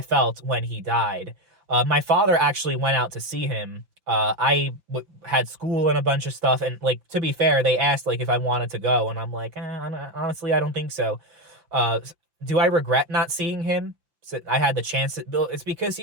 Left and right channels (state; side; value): late; left; 5.8 ms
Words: felt when he died. My father actually went out to see him. Had school and a bunch of stuff, and, like, to be fair, they asked like if I wanted to go, and I'm like, honestly, I don't think so. Uh, do I regret not seeing him? So I had the chance. It's because